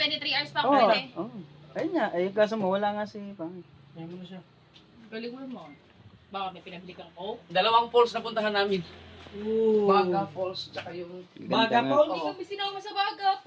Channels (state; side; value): identical; both; correlation 1.00